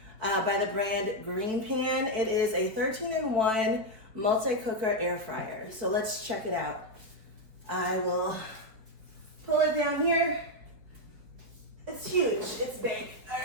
by the brand Green Pan. It is a 13-in-1 multi-cooker air fryer. So let's check it out. I will pull it down here. It's huge, it's big. All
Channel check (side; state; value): left; late; 4.4 ms